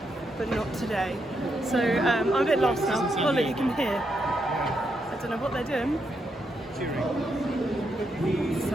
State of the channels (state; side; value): normal; both; correlation 0.81